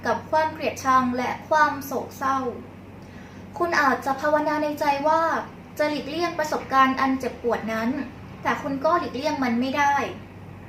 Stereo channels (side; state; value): both; identical; correlation 1.00